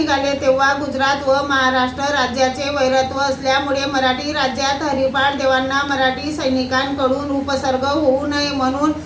तेव्हा गुजरात व महाराष्ट्र राज्याचे वैरत्व असल्यामुळे मराठी राज्यात हरिपाठ देवांना मराठी सैनिकांकडून उपसर्ग होऊ नये म्हणून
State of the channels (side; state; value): both; identical; correlation 1.00